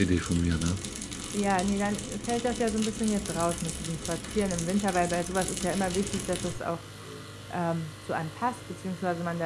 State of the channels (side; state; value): both; identical; correlation 1.00